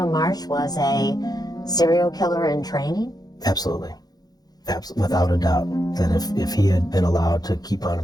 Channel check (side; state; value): right; late; 0.19 ms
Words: Marsh was a serial killer in training? Absolutely. Without a doubt. That if he had been allowed to keep on